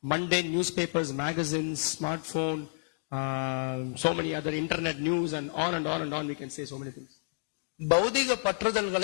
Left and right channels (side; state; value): right; silent; digital silence